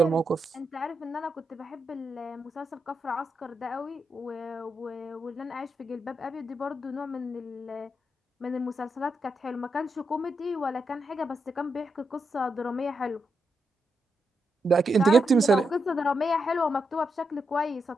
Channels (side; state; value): both; normal; correlation 0.84